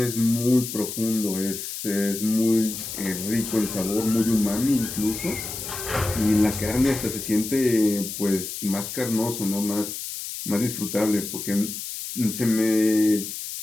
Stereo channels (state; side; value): noise; left; hiss, 7 dB below the sound